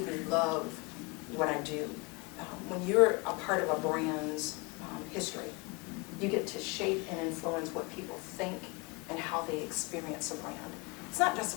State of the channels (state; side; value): quieter; right; 28.2 dB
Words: love what I do. When you're a part of a brand's history, you get to shape and influence what people think and how they experience a brand. It's not just